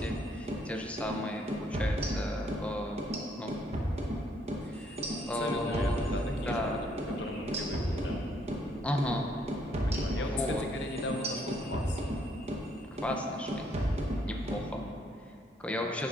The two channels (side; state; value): both; normal; correlation 0.69